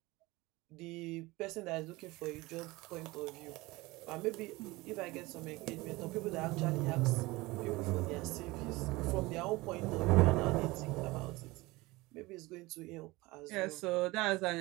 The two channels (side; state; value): left; quieter; 21.4 dB